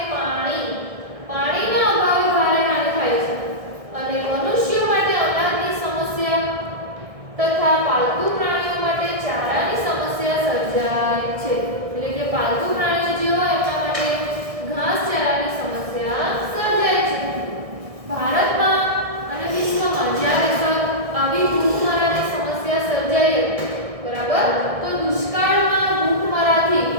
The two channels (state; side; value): late; left; 1.6 ms